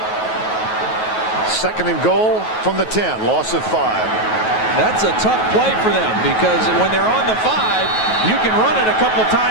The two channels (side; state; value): right; late; 9.3 ms